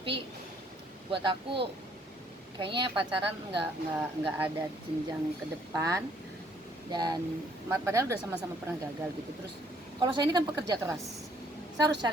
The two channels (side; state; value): both; normal; correlation 0.64